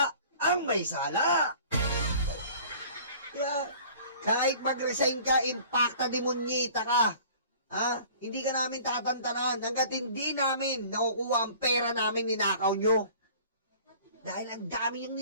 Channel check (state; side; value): inverted; both; correlation -0.48